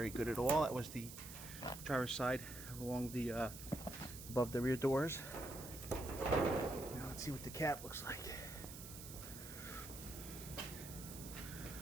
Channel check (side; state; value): right; noise; hiss, 11 dB below the sound